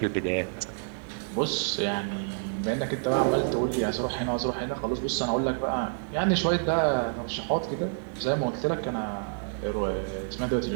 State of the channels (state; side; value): silent; left; digital silence